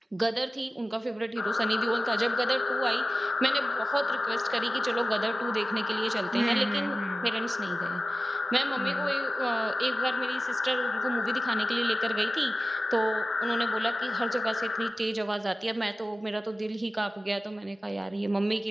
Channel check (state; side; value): normal; both; correlation 0.95